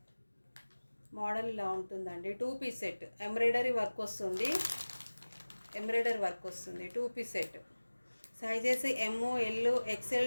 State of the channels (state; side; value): inverted; both; correlation -1.00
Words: మోడల్ ఇలా ఉంటుందండి. 2 పీస్ సెట్. ఎంబ్రాయిడరీ వర్క్ వస్తుంది. 2 piece set. Sizes ML XL